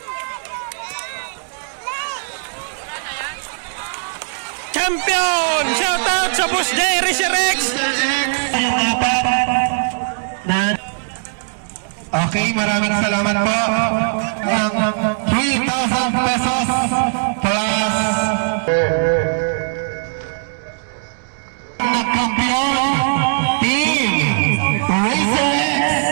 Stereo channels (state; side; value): silent; left; digital silence